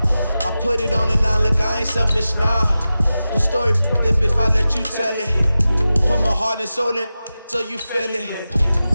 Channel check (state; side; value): inverted; both; correlation -0.94